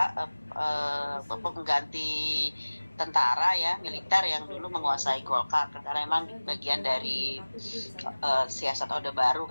pengganti tentara ya, militer yang dulu menguasai Golkar karena memang bagian dari siasat Orde Baru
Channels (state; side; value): inverted; both; correlation -1.00